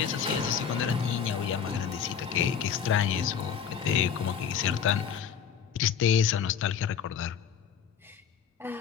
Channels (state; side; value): quieter; right; 7.8 dB